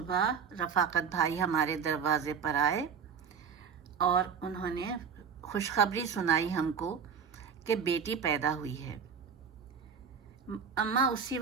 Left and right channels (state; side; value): quieter; left; 6.8 dB